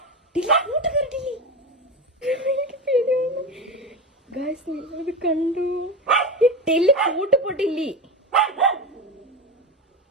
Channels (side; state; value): both; normal; correlation 0.20